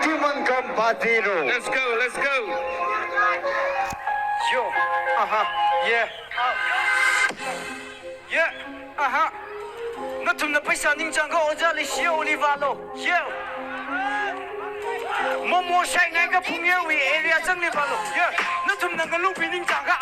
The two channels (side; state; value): both; identical; correlation 1.00